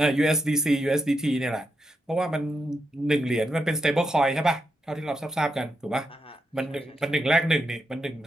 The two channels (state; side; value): normal; both; correlation 0.84